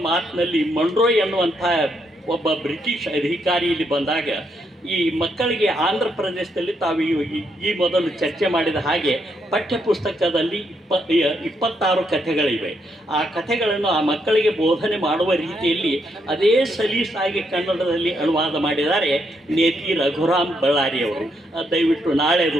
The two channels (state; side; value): normal; both; correlation 0.77